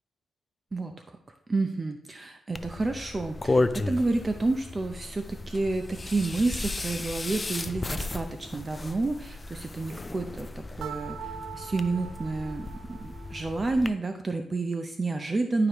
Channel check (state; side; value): normal; both; correlation 0.93